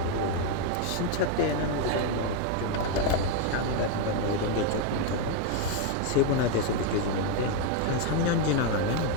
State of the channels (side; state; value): both; different; correlation 0.01